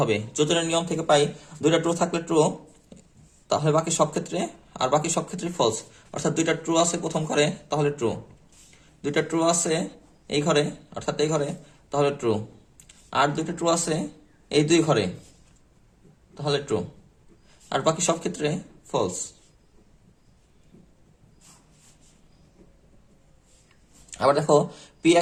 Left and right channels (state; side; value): identical; both; correlation 1.00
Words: যোজনের নিয়ম থেকে পাই দুইটা ট্রু থাকলে ট্রু, তাহলে বাকি সব ক্ষেত্রে, আর বাকি সব ক্ষেত্রে ফলস। অর্থাৎ দুইটা ট্রু আছে প্রথম ঘরে, তাহলে ট্রু। দুইটা ট্রু আছে এই ঘরে, অর্থাৎ এই ঘরে, তাহলে ট্রু। আর দুইটা ট্রু আছে এই দুই ঘরে, তাহলে ট্রু। আর বাকি সব ক্ষেত্রে ফলস। আবার দেখো পি